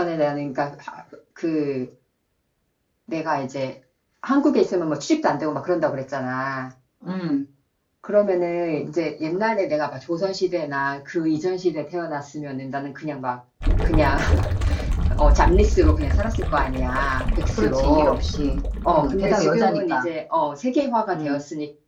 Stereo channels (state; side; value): identical; both; correlation 1.00